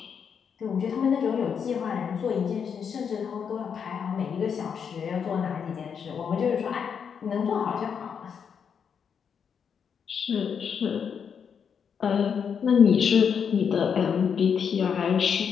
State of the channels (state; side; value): quieter; right; 7.1 dB